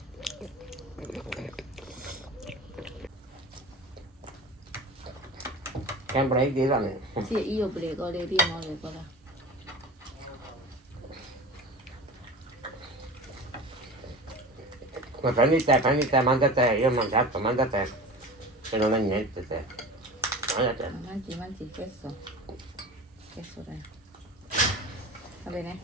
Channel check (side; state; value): both; normal; correlation 0.34